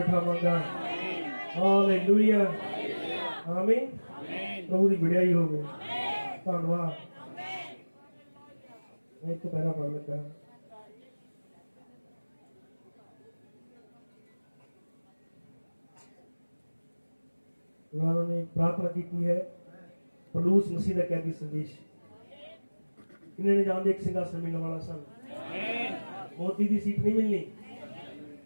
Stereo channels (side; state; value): both; inverted; correlation -1.00